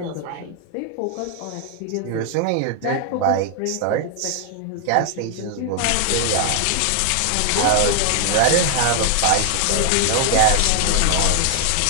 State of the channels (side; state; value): both; different; correlation 0.00